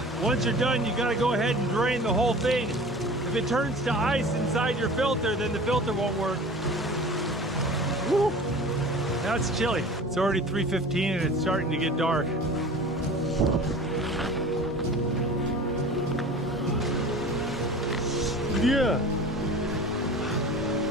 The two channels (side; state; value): both; normal; correlation 0.40